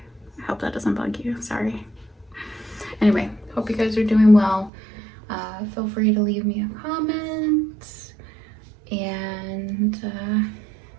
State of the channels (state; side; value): drops out; left; at 4.7 s